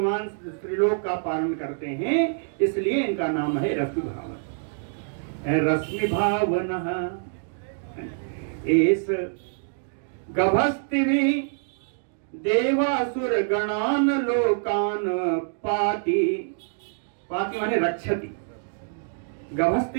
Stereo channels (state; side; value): silent; left; digital silence